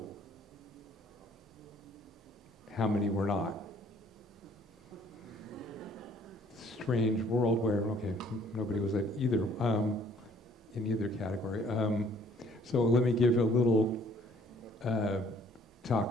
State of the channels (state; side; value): normal; both; correlation 0.59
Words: How many were not? Strange world where, okay, nobody was at either, in either category. So let me give a little talk